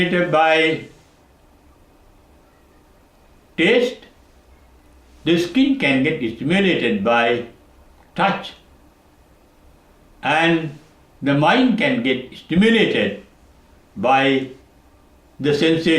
by taste, the skin can get stimulated by touch, and the mind can get stimulated by the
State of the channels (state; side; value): identical; both; correlation 1.00